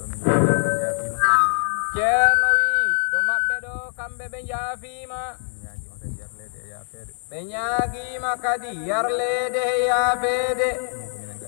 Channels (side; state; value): right; silent; digital silence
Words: ceerno wi ɗo maɓɓe ɗo kamɓe ɓe jaafima ɓe ñaagima kadi yarlede he yaafede